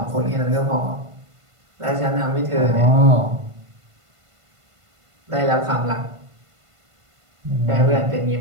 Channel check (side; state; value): left; late; 1.5 ms